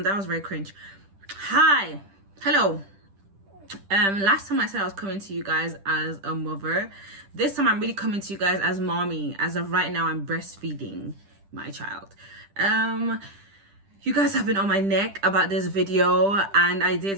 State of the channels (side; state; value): left; late; 10 ms